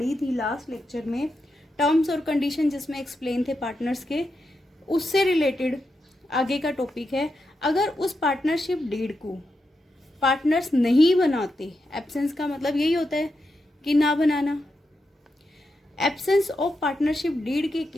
थी लास्ट लेक्चर में, टर्म्स और कंडीशन जिसमें एक्सप्लेन थे पार्टनर्स के, उससे रिलेटेड आगे का टॉपिक है। अगर उस पार्टनरशिप डीड को पार्टनर्स नहीं बनाते, एब्सेंस का मतलब यही होता है कि ना बनाना। एब्सेंस ऑफ पार्टनरशिप डीड के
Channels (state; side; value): normal; both; correlation 0.86